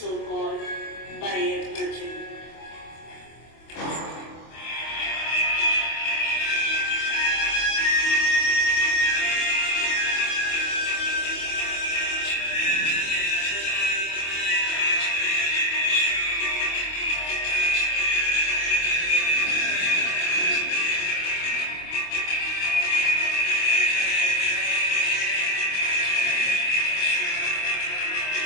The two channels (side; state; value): right; late; 25 ms